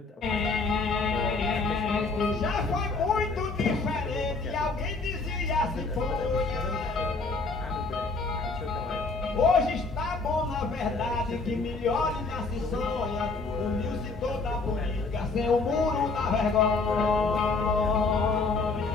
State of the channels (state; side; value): quieter; right; 3.9 dB